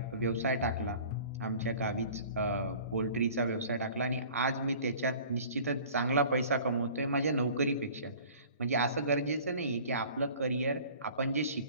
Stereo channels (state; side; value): inverted; both; correlation -0.47